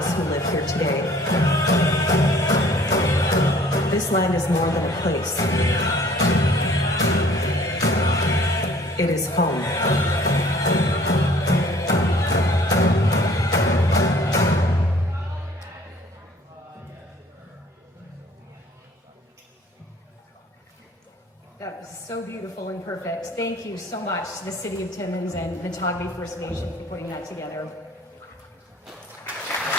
who live here today, this land is more than a place. It is home. That was so beautiful and perfect. Thank you so much to the City of Timmins and the Matagami First Nation for putting that together.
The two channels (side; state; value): both; normal; correlation 0.54